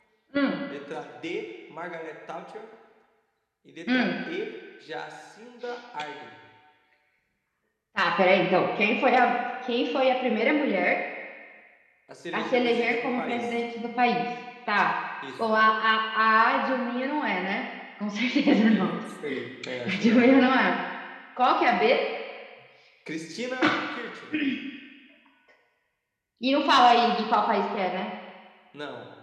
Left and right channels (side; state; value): both; identical; correlation 1.00